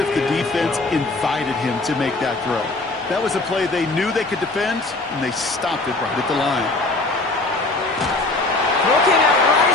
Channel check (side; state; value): right; quieter; 3.1 dB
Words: the defense invited him to make that throw. That was a play they knew they could defend, and they stopped it right at the line. Looking out right